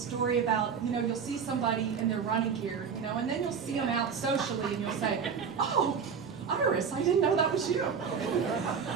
about, you know, you'll see somebody in their running gear, you know, and then you'll see them out socially and you'll say, oh, Iris, I didn't know that was you.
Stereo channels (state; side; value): quieter; left; 6.4 dB